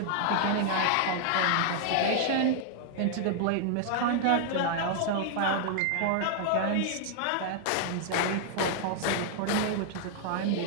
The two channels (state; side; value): different; both; correlation 0.00